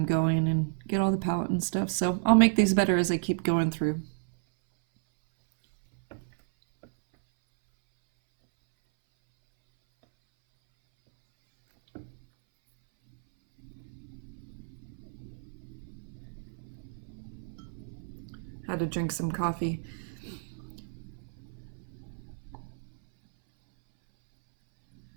going and get all the palette and stuff. So I'll make these better as I keep going through. Had to drink some coffee.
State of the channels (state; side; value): silent; left; 57 dB below the other